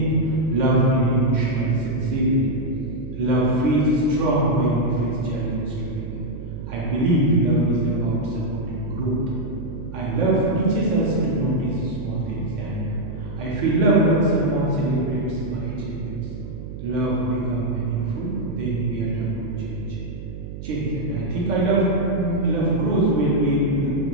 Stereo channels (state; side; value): noise; right; hum, 10 dB below the sound